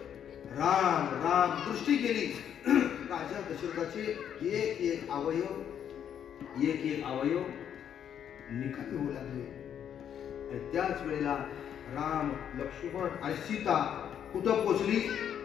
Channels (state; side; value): quieter; right; 9.1 dB